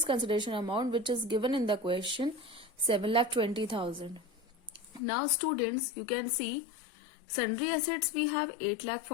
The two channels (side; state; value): right; drops out; at 5.0 s